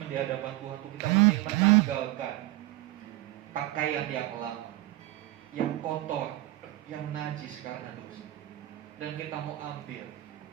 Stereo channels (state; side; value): quieter; left; 16.9 dB